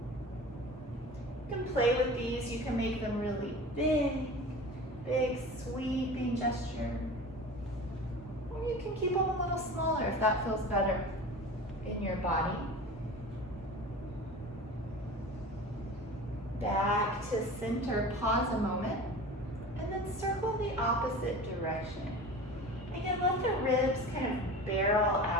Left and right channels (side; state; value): both; normal; correlation 0.36